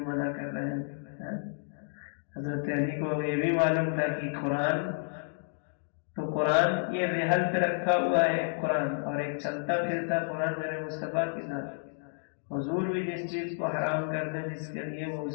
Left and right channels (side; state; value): right; silent; digital silence